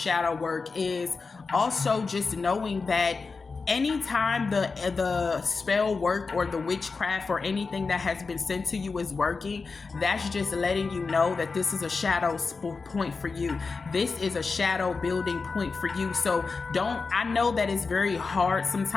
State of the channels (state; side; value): quieter; right; 4.4 dB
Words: work is also just knowing that anytime the spell work or the witchcraft or anything that has been sent to you is working, that's just letting you know that this is a shadow point for you. This is a shadow building point for you. So I know that it's very hard